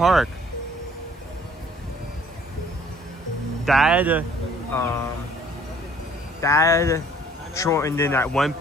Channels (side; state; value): both; normal; correlation 0.57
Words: Dad shortened in at one